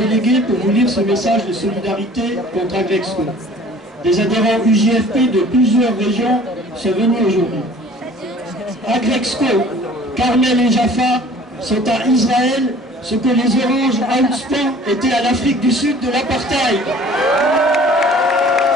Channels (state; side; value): normal; both; correlation 0.49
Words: pour vous lire ce message de solidarité contre Agrexco. Des adhérents UJFP de plusieurs régions sont venus aujourd'hui. Agrexco, Carmel et Jaffa sont à Israël ce que les Oranges à Outspan étaient à l'Afrique du Sud de l'apartheid.